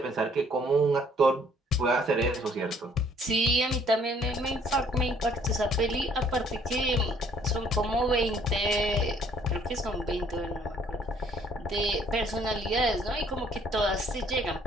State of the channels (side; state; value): both; normal; correlation 0.61